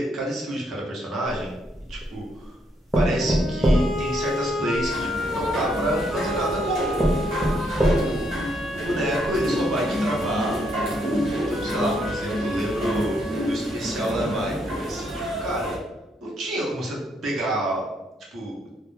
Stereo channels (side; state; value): both; normal; correlation 0.74